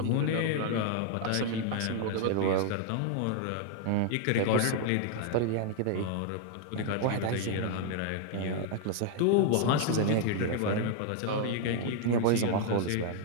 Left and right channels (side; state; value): both; different; correlation 0.00